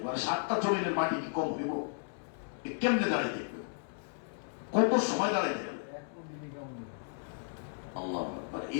মানে 7টা জমিনের মাটি কি কম হইব? কেমনে দাঁড়াইতে হবে, কত সময় দাঁড়াইতে হবে? আল্লাহ আকবার।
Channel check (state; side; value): silent; right; digital silence